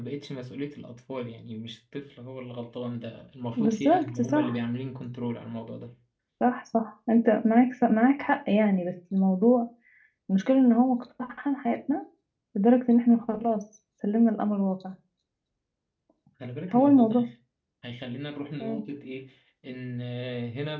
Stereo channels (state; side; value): identical; both; correlation 1.00